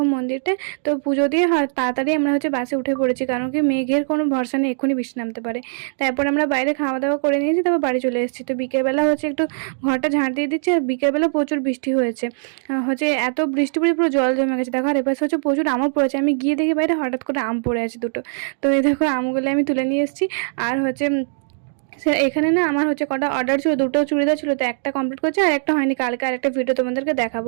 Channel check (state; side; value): silent; left; digital silence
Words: মন্দিরটা। তো পুজো দিয়ে তাড়াতাড়ি আমরা হচ্ছে বাসে উঠে পড়েছি, কারণ কি মেঘের কোনো ভরসা নেই, এক্ষুনি বৃষ্টি নামতে পারে। তারপর আমরা বাইরে খাওয়া দাওয়া করে নিয়েছি, তারপর বাড়ি চলে এসেছি। তো বিকেলবেলা হচ্ছে একটু ঘরটা ঝাঁট দিয়ে দিচ্ছে, আর বিকেলবেলা প্রচুর বৃষ্টি হয়েছে। হচ্ছে এত বৃষ্টি পড়ে পুরো জল জমে গেছে। দেখো আর এপাশে হচ্ছে প্রচুর আমও পড়েছে। আমি গিয়ে দেখি বাইরে হঠাৎ করে আম পড়ে আছে দুটো। তো এই দেখো আমগুলো আমি তুলে নিয়ে এসেছি। আর হচ্ছে এখানে না আমার হচ্ছে কটা অর্ডার ছিল, দুটো চুড়িদার ছিল, তো একটা কমপ্লিট করছে আর একটা হয়নি। কালকে আর একটা ভিডিও তোমাদেরকে